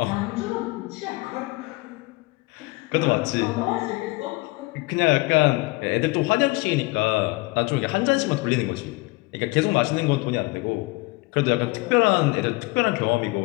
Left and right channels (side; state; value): right; quieter; 24.0 dB